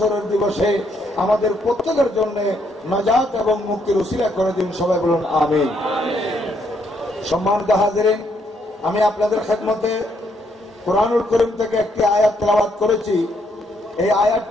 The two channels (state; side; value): normal; both; correlation 0.73